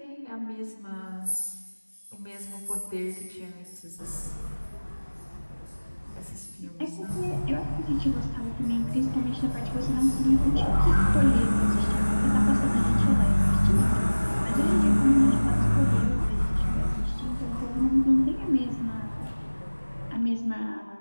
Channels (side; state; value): both; inverted; correlation -1.00